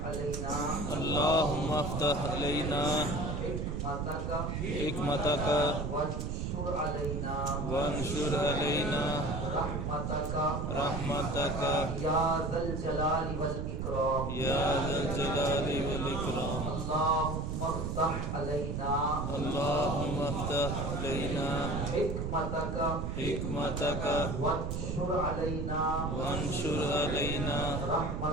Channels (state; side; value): noise; right; rumble, 2 dB below the sound